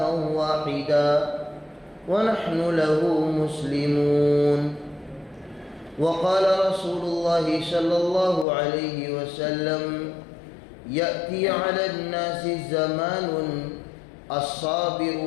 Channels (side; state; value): right; drops out; at 8.5 s